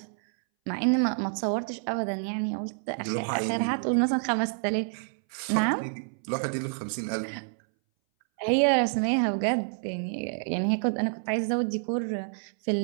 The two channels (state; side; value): silent; left; 59 dB below the other